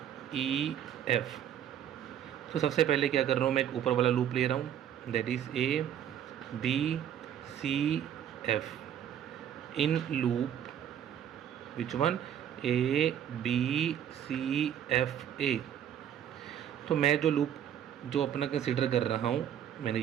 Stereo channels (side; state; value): left; quieter; 9.9 dB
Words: E F। तो सबसे पहले क्या कर रहा हूँ, मैं एक ऊपर वाला लूप ले रहा हूँ, that is A B C F in loop which one, A B C F A। तो मैं जो लूप जो अपना कंसिडर कर रहा हूँ, मैंने